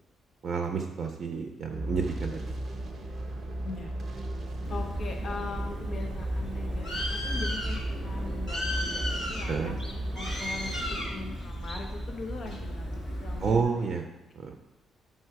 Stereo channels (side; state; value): both; normal; correlation 0.81